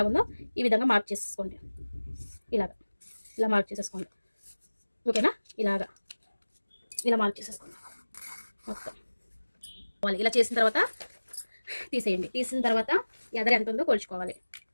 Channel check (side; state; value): both; inverted; correlation -1.00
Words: ఈ విధంగా మార్క్ చేసేసుకోండి. ఇలా మార్క్ చేసేసుకోండి. ఓకేనా, ఇలా మార్క్ చేసేసుకోండి మొత్తం. ఇలా చేసిన తర్వాత తీసేయండి. తీసిన తర్వాత ఎదర ఎంత ఉందో కొలుచుకోవాలి.